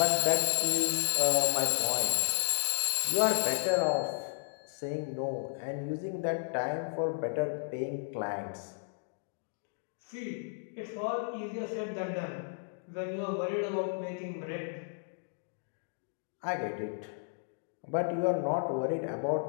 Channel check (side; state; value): right; silent; digital silence